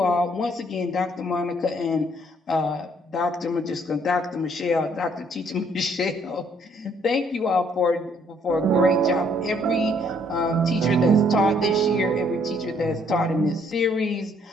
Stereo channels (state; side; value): normal; both; correlation 0.66